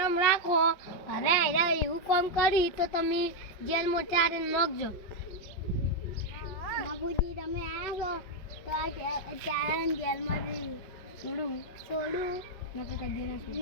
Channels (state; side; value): late; right; 5.4 ms